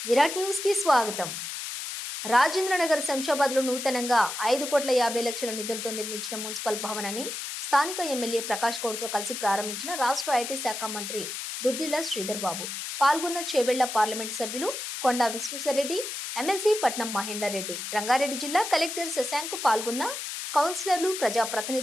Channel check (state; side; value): noise; left; hiss, 6 dB below the sound